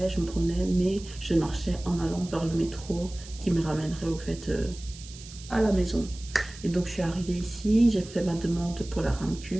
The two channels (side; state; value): right; noise; hiss, 17 dB below the sound